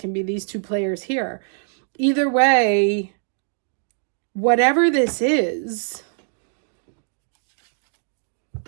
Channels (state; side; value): silent; left; digital silence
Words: be these two players here. Either way, whatever this is,